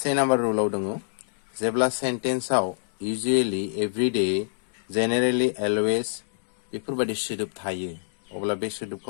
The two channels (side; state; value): right; silent; 61 dB below the other